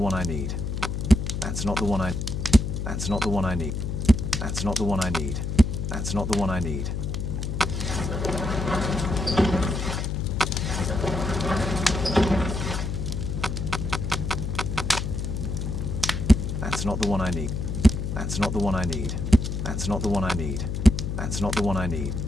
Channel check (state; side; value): noise; left; hum, 3 dB below the sound